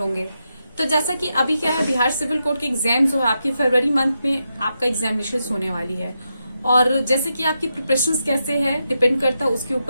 तो जैसा कि अभी क्या है, बिहार सिविल कोड के एग्जाम जो है आपकी फरवरी मंथ में आपका एग्जामिनेशन होने वाली है। और जैसे कि आपकी प्रिपरेशंस कैसे है डिपेंड करता है उसके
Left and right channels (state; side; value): inverted; both; correlation -0.86